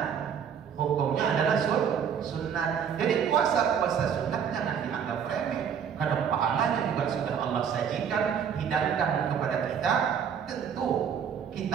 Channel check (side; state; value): left; quieter; 7.7 dB